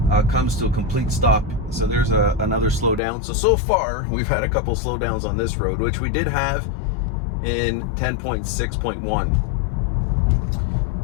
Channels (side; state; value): right; drops out; at 3.0 s